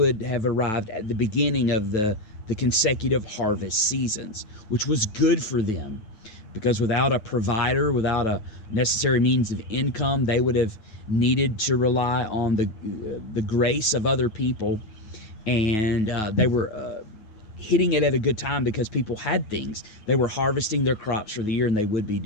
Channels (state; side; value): late; right; 9.2 ms